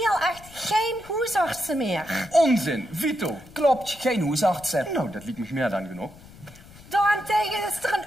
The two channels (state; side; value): noise; left; rumble, 21 dB below the sound